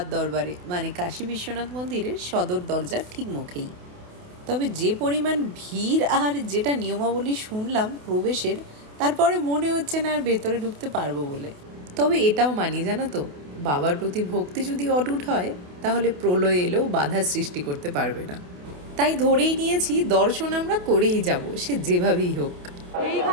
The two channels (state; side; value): late; left; 28 ms